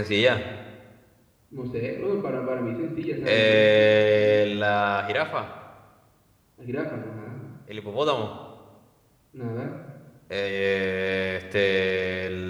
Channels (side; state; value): both; identical; correlation 1.00